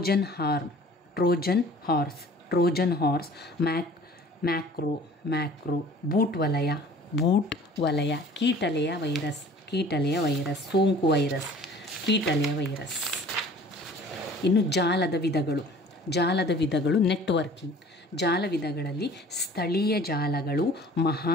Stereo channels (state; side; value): normal; both; correlation 0.49